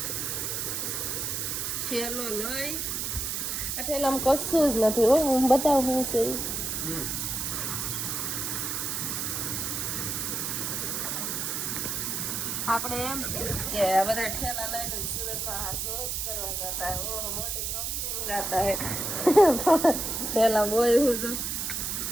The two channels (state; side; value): noise; right; hiss, 2 dB below the sound